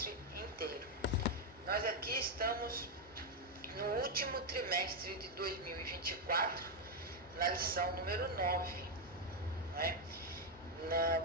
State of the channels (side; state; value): both; normal; correlation 0.02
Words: inteiro. Nós aqui estamos no último trimestre de 2024, na lição número 9. Né?